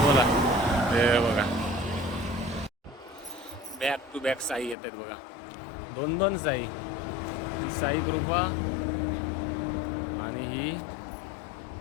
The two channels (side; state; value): right; drops out; at 4.8 s